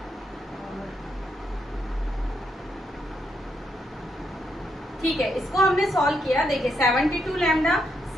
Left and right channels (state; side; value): normal; both; correlation 0.78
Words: ठीक है, इसको हमने सॉल्व किया। देखिए 72 लैम्डा